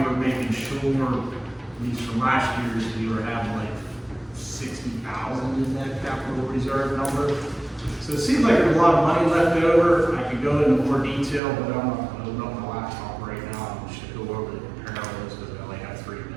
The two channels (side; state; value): left; drops out; at 11.4 s